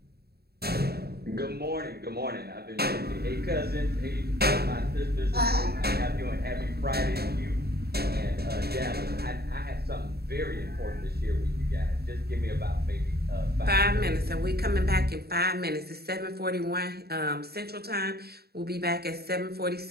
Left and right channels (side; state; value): left; late; 0.46 ms